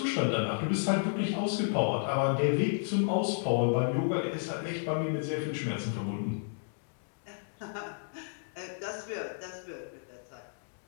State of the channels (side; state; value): right; silent; digital silence